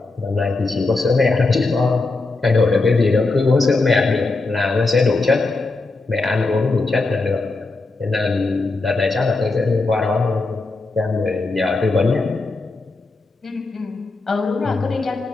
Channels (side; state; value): right; quieter; 3.5 dB